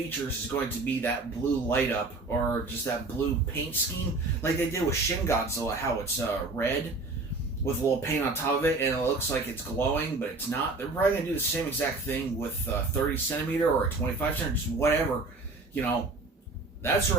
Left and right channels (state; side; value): quieter; left; 3.4 dB